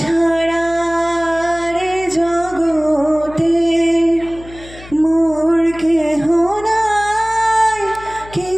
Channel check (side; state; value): left; noise; hum, 18 dB below the sound